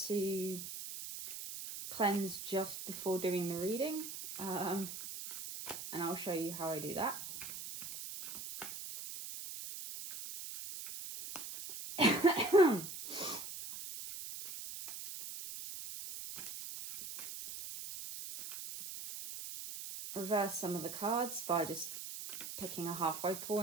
to cleanse just before doing the reading. And I'll show you how I do that. Reverse some of the cards by just picking a halfway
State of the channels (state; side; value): noise; right; hiss, 8 dB below the sound